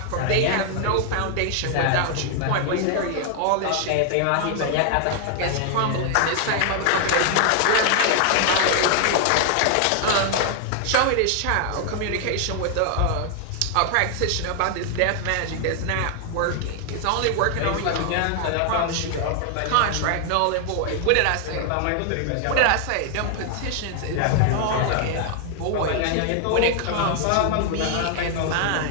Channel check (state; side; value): different; both; correlation 0.00